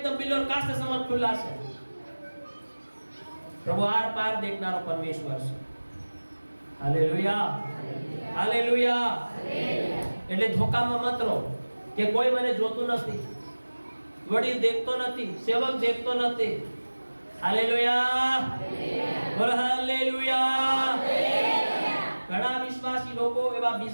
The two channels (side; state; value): both; inverted; correlation -1.00